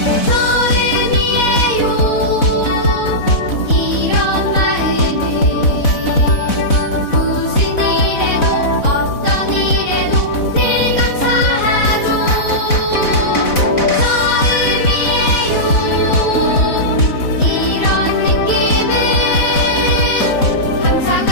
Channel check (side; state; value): right; late; 4.1 ms